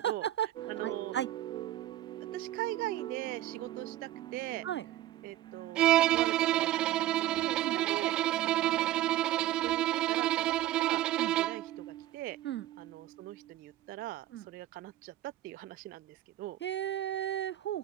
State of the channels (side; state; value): left; quieter; 14.0 dB